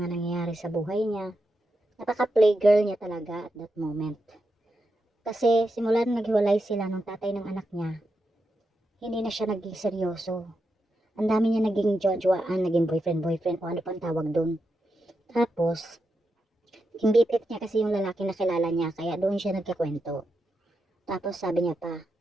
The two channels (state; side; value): normal; both; correlation 0.86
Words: nangyayari sa buhay niya. Napaka-playgirl niya talaga at that moment. Kasi simula nang naghiwalay sila ng tatay ng anak niya, hindi na siya naging seryoso. Ang dami niya naging jojoaan, naging boyfriend, o ano pang tawag doon. Tapos, yung BFF niya kasi yung lalaki na kilala niya, kaya doon siya nagkakwento. Tapos sabi niya pa,